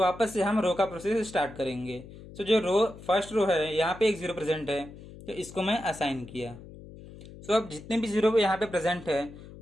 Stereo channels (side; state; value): left; noise; hum, 17 dB below the sound